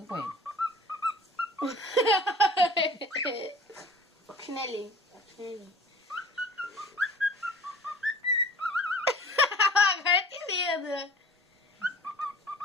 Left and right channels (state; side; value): normal; both; correlation 0.45